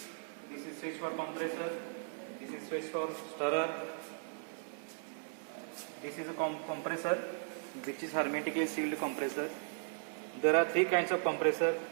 This is switch for compressor. This is switch for stirrer. This is a compressor, which is hermetically sealed compressor. There are three kinds of compressor:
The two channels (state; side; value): silent; left; 53 dB below the other